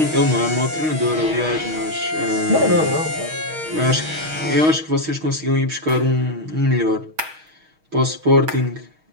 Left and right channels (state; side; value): late; left; 6.4 ms